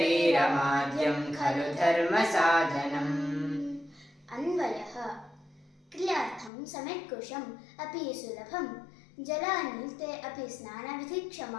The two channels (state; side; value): drops out; right; at 6.5 s